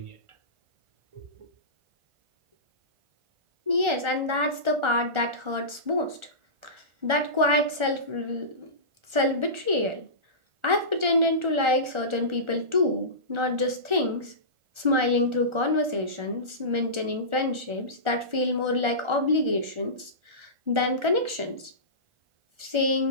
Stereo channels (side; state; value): left; late; 1.4 ms